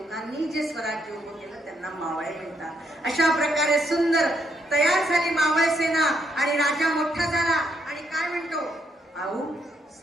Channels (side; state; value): both; normal; correlation 0.75